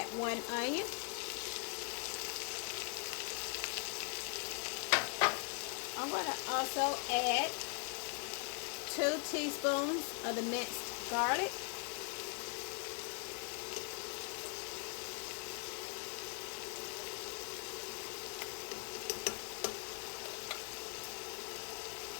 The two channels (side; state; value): right; quieter; 38.0 dB